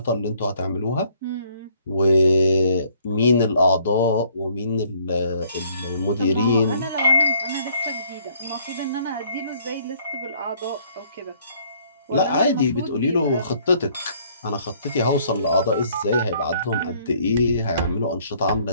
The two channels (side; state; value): both; inverted; correlation -0.63